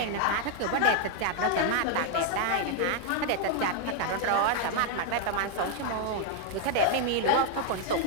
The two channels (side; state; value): both; different; correlation 0.00